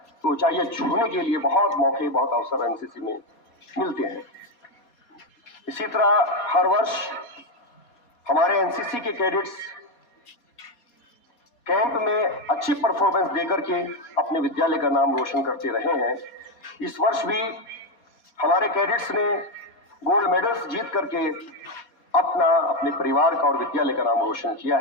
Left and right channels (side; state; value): right; late; 4.2 ms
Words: तो ऊंचाइयां छूने के लिए बहुत मौके, बहुत अवसर एनसीसी में मिलते हैं। इसी तरह हर वर्ष हमारे एनसीसी के कैडेट्स कैंप में अच्छी परफॉर्मेंस देकर के अपने विद्यालय का नाम रोशन करते रहे हैं। इस वर्ष भी हमारे कैडेट्स ने गोल्ड मेडल्स जीत करके अपने परिवार का और विद्यालय का नाम रोशन किया